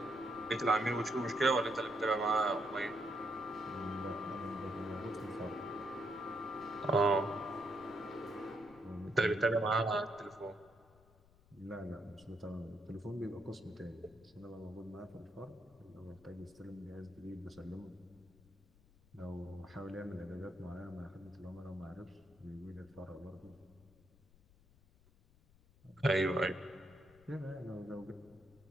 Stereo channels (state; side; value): noise; left; rumble, 27 dB below the sound